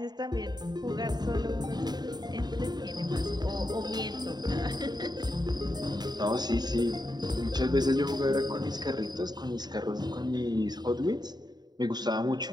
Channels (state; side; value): late; left; 0.20 ms